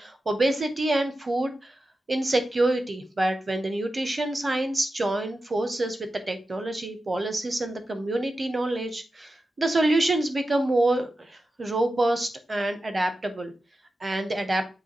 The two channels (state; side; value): normal; both; correlation 0.92